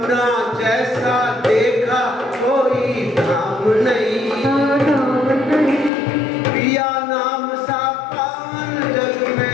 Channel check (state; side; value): drops out; right; at 5.9 s